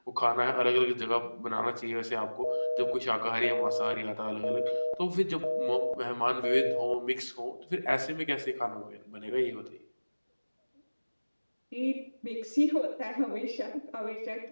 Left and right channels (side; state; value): both; inverted; correlation -1.00